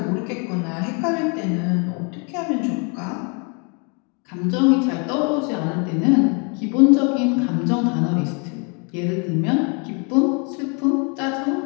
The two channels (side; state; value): right; quieter; 35.3 dB